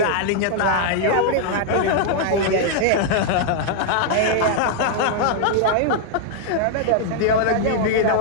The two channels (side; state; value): both; different; correlation -0.01